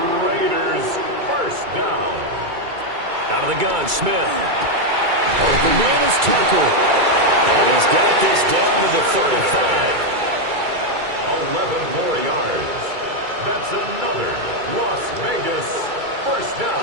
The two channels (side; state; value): left; late; 2.3 ms